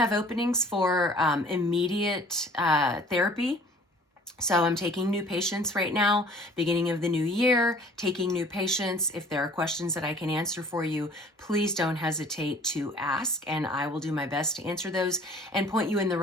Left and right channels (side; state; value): both; normal; correlation 0.51